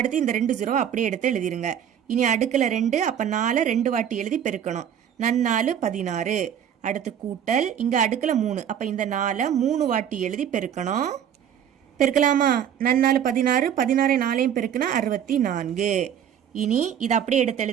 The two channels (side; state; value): left; quieter; 9.3 dB